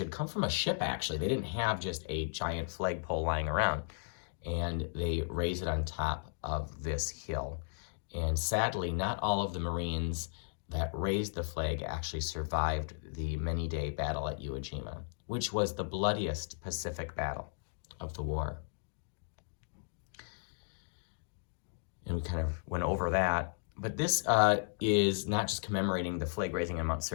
come from a ship, actually. They didn't have just a giant flagpole lying around, and they raised it on top of this hill. And sadly, not all of the Marines that raised the flag actually survived the many-day battle at Iwo Jima, which was the bloodiest Pacific battle of the war. And we kind of went over that. But this is not just commemorating the flag raising on Mount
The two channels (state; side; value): silent; right; digital silence